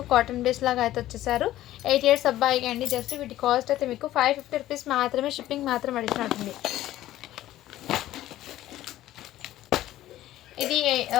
కాటన్ బేస్ లాగా అయితే వచ్చేసారు. 8 ఇయర్స్ అబ్బాయికి అండి. జస్ట్ వీటి కాస్ట్ అయితే మీకు 550 రూపీస్ మాత్రమే. షిప్పింగ్ మాత్రం అడిగినట్టుంది. ఇది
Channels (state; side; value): quieter; right; 14.3 dB